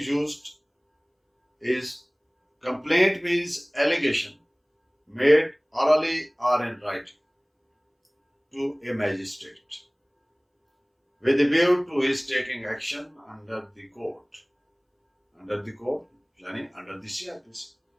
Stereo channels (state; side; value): identical; both; correlation 1.00